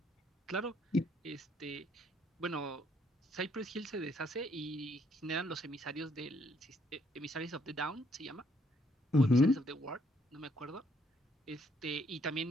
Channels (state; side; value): normal; both; correlation 0.69